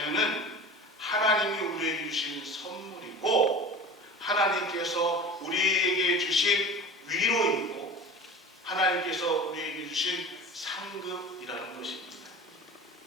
하나님이 우리에게 주신 선물이고 하나님께서 우리에게 주신 위로이고 하나님께서 우리에게 주신 상급이라는 것입니다.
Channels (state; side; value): normal; both; correlation 0.36